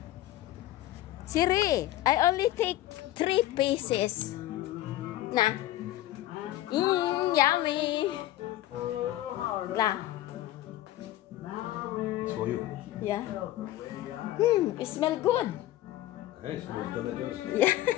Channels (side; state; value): right; quieter; 14.7 dB